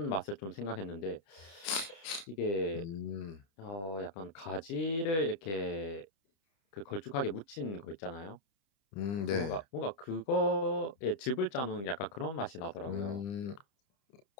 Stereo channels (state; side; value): late; right; 30 ms